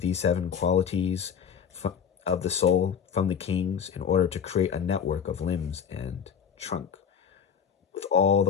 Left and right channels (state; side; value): quieter; right; 7.5 dB